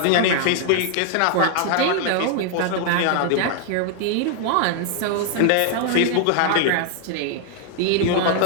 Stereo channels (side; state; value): both; different; correlation 0.00